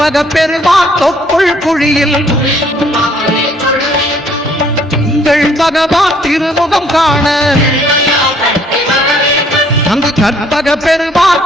பெருமான் தொப்புள் குழியில் திங்கள் பகவான் திருமுகம் காண அங்கு கற்பக பெருமான்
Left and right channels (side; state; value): both; normal; correlation 0.62